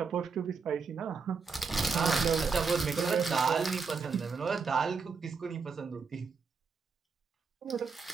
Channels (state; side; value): quieter; left; 5.2 dB